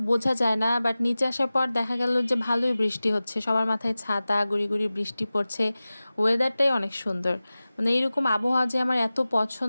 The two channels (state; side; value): inverted; both; correlation -0.97